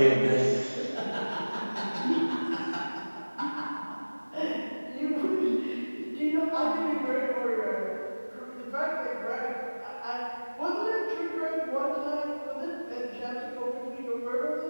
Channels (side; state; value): both; inverted; correlation -1.00